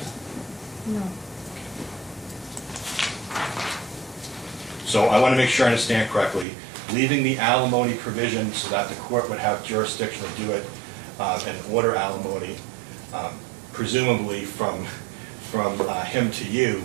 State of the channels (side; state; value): left; drops out; at 6.5 s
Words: no. So I want to make sure I understand correctly. Leaving the alimony provision so that the court would have jurisdiction to do it and order alimony, presumably from him to you,